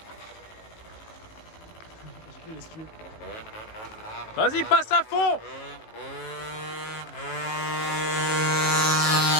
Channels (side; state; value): right; late; 18 ms